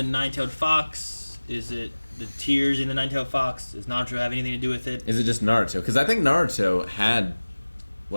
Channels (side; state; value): both; inverted; correlation -1.00